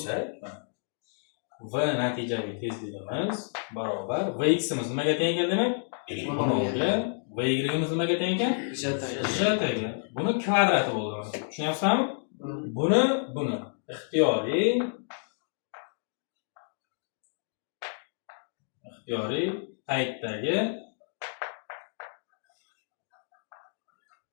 v natijaviy tezligimiz barobar vx imiz nimaga teng keldi demak? V0 ga va yimiz nimaga teng ekan? J ga. Buni kvadrati bo'ladi. Tushunyapsizmi? Buni ixtiyoriy paytdagi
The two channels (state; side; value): silent; right; digital silence